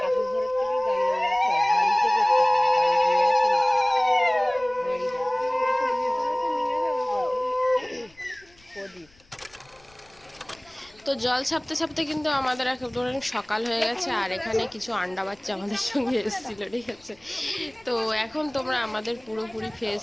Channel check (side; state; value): left; noise; rumble, 29 dB below the sound